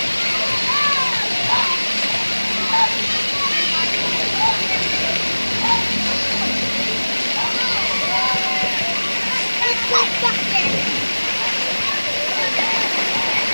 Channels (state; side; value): inverted; both; correlation -1.00